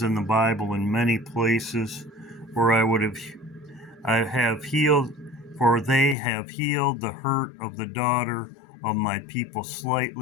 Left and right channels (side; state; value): right; drops out; at 6.2 s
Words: in the Bible in many places where I have healed, for they have healed the hurt of the daughter of my people